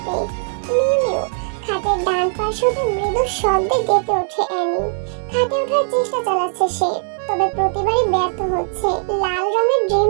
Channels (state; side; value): silent; left; digital silence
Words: মিউ মিউ খাটের ডান পাশ হতে মৃদু শব্দে ডেকে ওঠে অ্যানি। খাটে ওঠার চেষ্টা চালাচ্ছে সে, তবে প্রতিবারই ব্যর্থ হচ্ছে। লাল রঙের